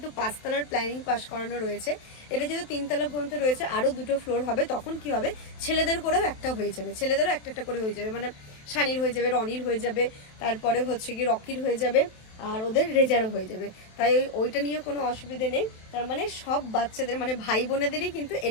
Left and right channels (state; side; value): late; right; 27 ms